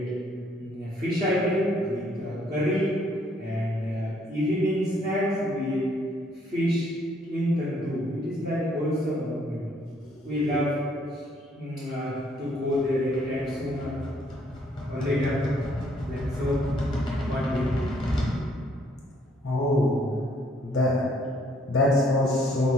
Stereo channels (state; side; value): normal; both; correlation 0.66